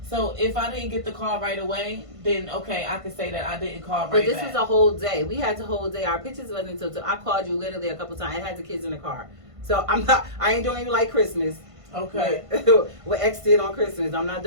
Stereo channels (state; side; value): late; left; 1.5 ms